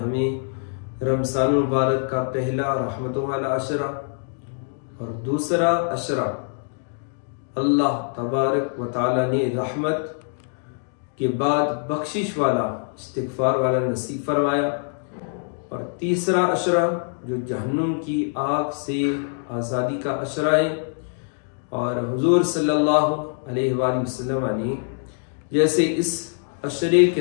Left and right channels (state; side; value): silent; right; 63 dB below the other